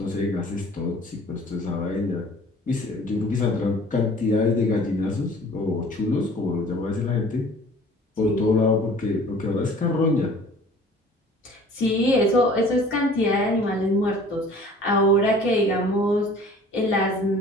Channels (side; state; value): both; normal; correlation 0.49